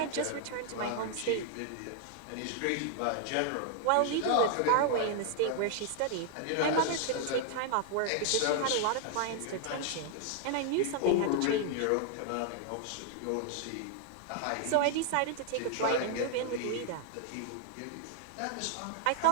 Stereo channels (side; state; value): both; different; correlation 0.00